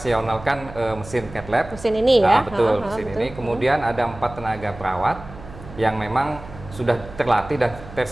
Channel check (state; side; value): noise; right; hum, 16 dB below the sound